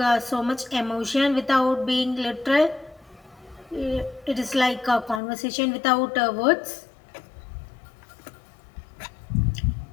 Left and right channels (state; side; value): drops out; right; at 5.2 s